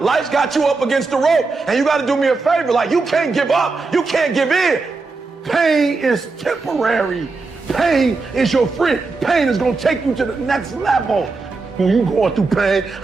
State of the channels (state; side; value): quieter; left; 4.0 dB